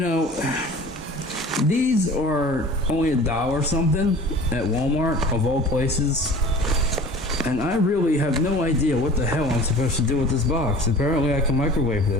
these are only $1 something at Walmart, of all places. And I really have no idea what the hell I'm supposed to do with this box. Apparently I can microwave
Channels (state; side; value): normal; both; correlation 0.43